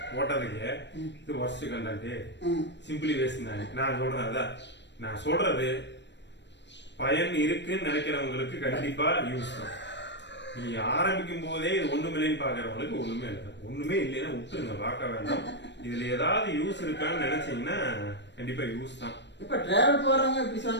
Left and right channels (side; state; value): right; late; 0.51 ms